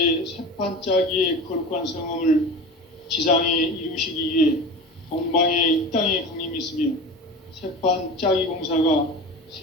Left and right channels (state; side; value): normal; both; correlation 0.32